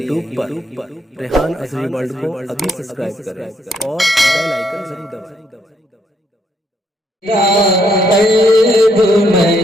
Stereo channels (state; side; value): normal; both; correlation 0.73